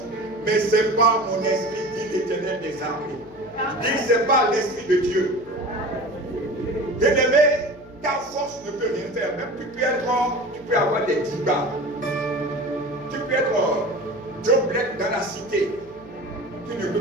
mais c'est par mon esprit, dit l'Éternel des armées. Dit, c'est par l'esprit de Dieu. Bien-aimé, ta force ne peut rien faire. Même tu peux avoir des débats. Tu peux être Joe Black dans la cité. Tu ne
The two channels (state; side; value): noise; left; hum, 22 dB below the sound